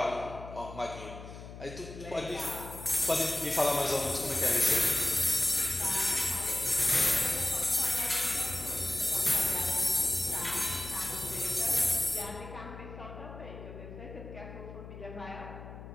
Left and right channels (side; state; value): left; noise; hum, 13 dB below the sound